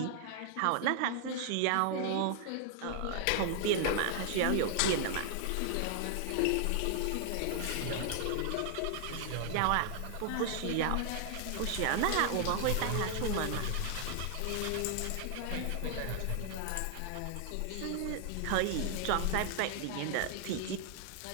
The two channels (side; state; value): both; different; correlation 0.00